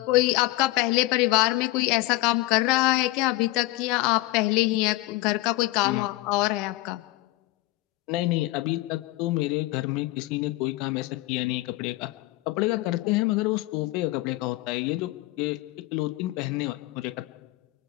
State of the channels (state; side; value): quieter; right; 19.4 dB